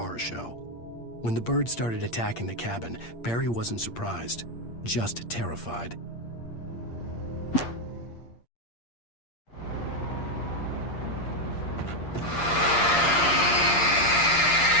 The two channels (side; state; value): right; late; 8.6 ms